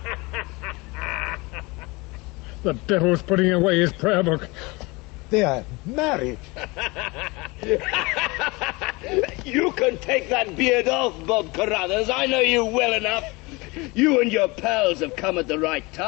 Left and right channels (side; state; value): right; quieter; 24.7 dB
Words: The devil's putting away his prayer book. They are married. You can take that beard off, Bob Carruthers. I know you well enough. You and your pals have come at the right